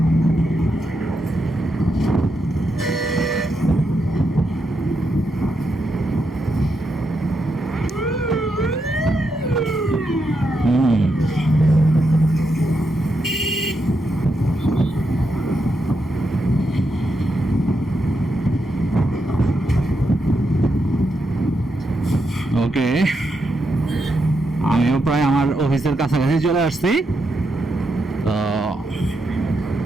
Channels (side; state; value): both; normal; correlation 0.83